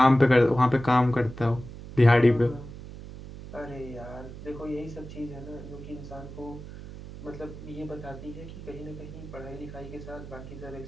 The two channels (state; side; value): noise; right; hum, 13 dB below the sound